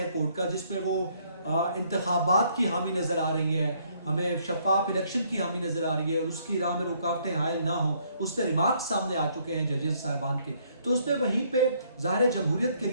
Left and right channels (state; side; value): inverted; both; correlation -0.67